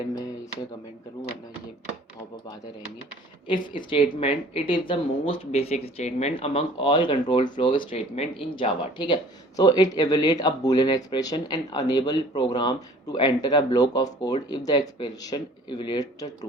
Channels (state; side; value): normal; both; correlation 0.50